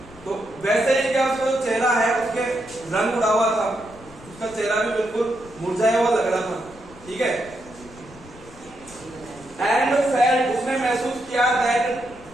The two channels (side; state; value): left; noise; rumble, 21 dB below the sound